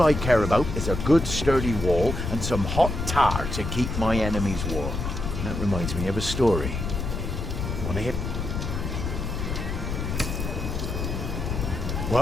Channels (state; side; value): noise; left; rumble, 3 dB below the sound